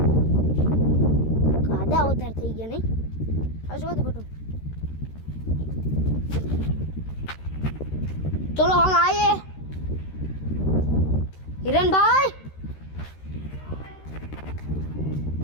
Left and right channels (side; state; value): right; late; 13 ms